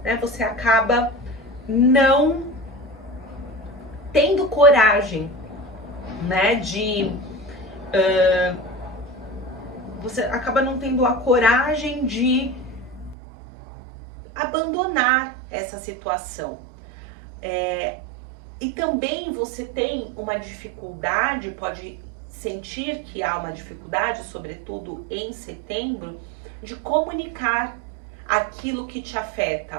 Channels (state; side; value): drops out; left; at 13.2 s